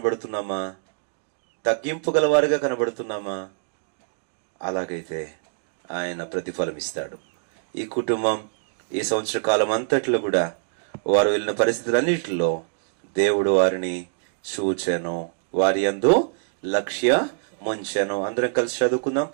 తగ్గింపు గలవారిగా కనబడుతున్నామా? అలాగైతే ఆయన ప్రతిఫలం ఇస్తాడు. ఈ కుటుంబం ఈ సంవత్సర కాలం అంతట్లో కూడా వారు వెళ్ళిన పరిస్థితులన్నిటిలో దేవుడు వారిని చూచెను, వారి యందు లక్ష్య ముంచెను. అందరం కలిసి చదువుకుందాం,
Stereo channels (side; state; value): left; silent; digital silence